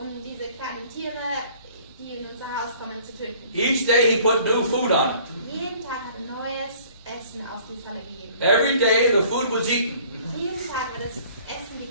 kleinen Tiere, die in unser Haus kommen, zu töten. Each day he put new food on it. Jeden Tag hat er neues Essen auf die Falle gegeben. Every day the food was eaten Jeden Tag wird das Essen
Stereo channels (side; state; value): both; inverted; correlation -0.54